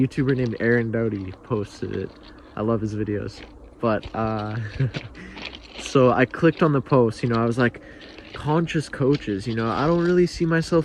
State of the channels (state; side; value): identical; both; correlation 1.00